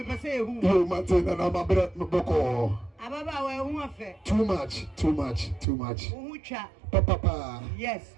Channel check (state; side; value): drops out; left; at 5.7 s